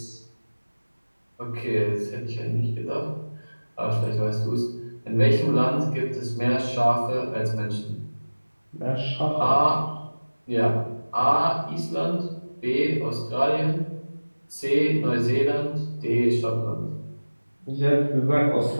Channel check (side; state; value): both; inverted; correlation -1.00